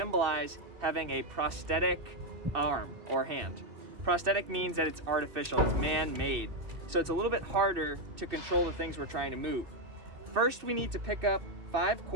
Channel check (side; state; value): left; late; 2.6 ms